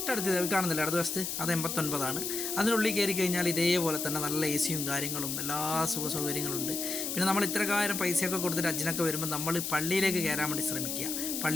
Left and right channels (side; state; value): left; noise; hiss, 3 dB below the sound